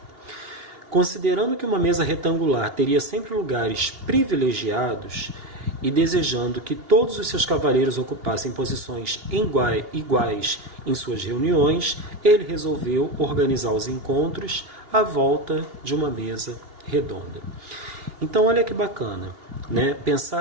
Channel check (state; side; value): late; left; 2.8 ms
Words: Considerando que uma mesa retangular teria sempre lugares privilegiados e desejando que todos os seus cavaleiros ocupassem posições iguais em suas reuniões, ele resolveu organizar os encontros à volta de uma mesa redonda. Então, olha que bacana, né?